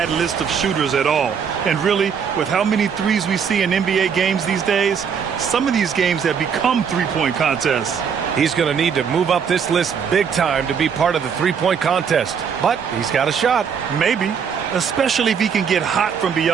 list of shooters at all. And really, with how many threes we see in NBA games these days, some of these games have become three-point contests. He's going to need to move up this list big time to be part of the three-point contest. But he's got a shot. Maybe, especially if he can get hot from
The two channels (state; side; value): quieter; left; 6.9 dB